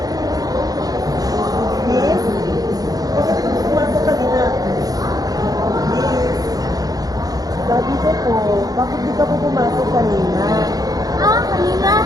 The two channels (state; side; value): late; left; 0.18 ms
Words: Miss? Bakit ka pumasok kanina? Miss? Sabi ko po, bakit di ka po pumasok kanina? kanina.